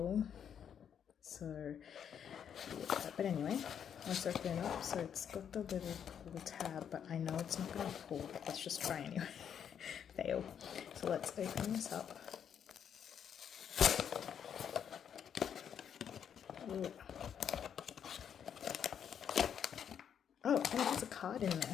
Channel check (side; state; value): right; quieter; 8.3 dB